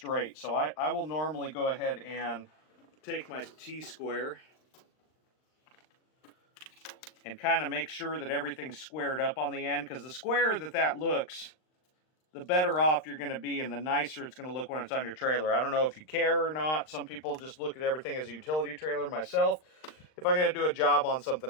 So I will normally go ahead and take my T-square and kind of make sure that everything's squared up on the end, because the squarer that looks, the better off you're going to be and the nicer it's going to look when it's on your trailer. I don't know if you care or not. Some people just look at everything as a utility trailer. Myself, if I'm going to do a job on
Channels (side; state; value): right; late; 39 ms